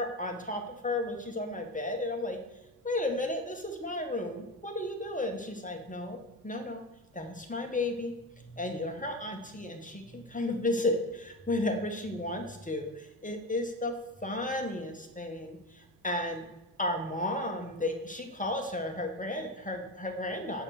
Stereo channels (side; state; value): both; normal; correlation 0.22